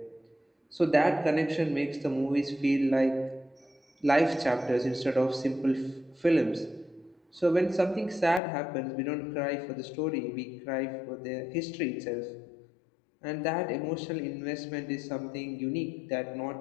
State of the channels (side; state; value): right; drops out; at 8.4 s